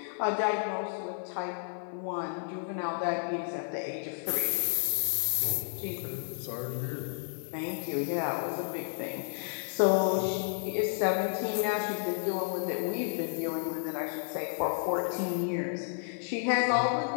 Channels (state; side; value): silent; right; 57 dB below the other